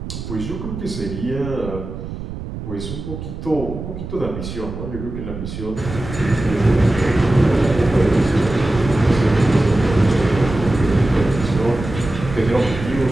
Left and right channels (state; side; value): noise; right; rumble, 9 dB below the sound